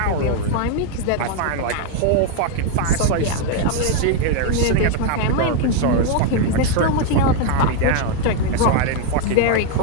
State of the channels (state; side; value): different; both; correlation 0.01